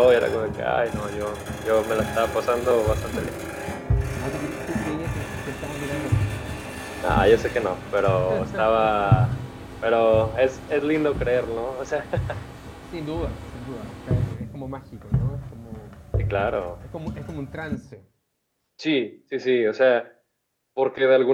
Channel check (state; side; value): identical; both; correlation 1.00